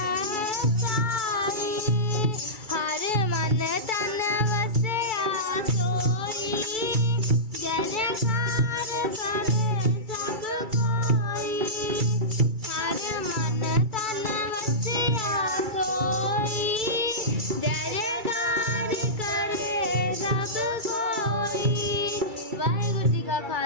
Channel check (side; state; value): left; late; 2.3 ms